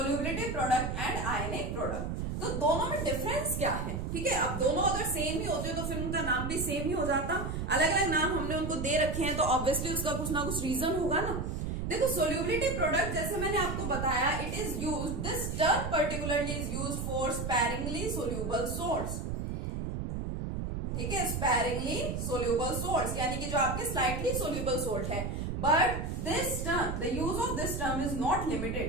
product and ionic product. तो दोनों में डिफरेंस क्या है, ठीक है। अब दोनों अगर सेम ही होते तो फिर उनका नाम भी सेम ही हो जाता। अलग अलग नाम हमने उनको दे रखे हैं, तो ऑब्वियसली उसका कुछ ना कुछ रीजन होगा ना। देखो सोल्यूबिलिटी प्रोडक्ट जैसे मैंने आपको बताया, it is used, this term particularly is used for sparingly soluble salts, ठीक है, स्पैरिंगली सोल्यूबल सॉल्ट्स, यानी कि जो आपके स्लाइटली सोल्यूबल सॉल्ट है। But this term, the use of this term is not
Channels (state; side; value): noise; right; rumble, 3 dB below the sound